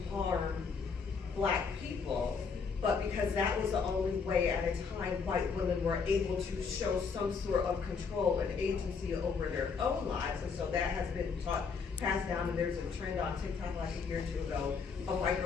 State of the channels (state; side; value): quieter; right; 5.4 dB